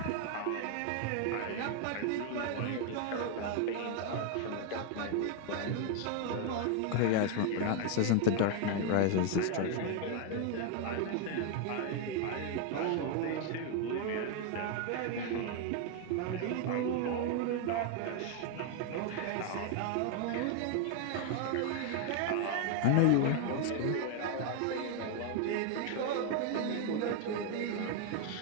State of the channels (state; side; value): different; both; correlation 0.01